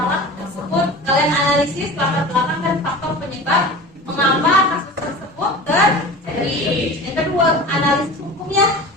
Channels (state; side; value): normal; both; correlation 0.35